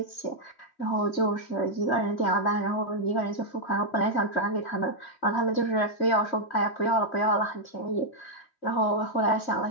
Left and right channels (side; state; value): right; late; 3.1 ms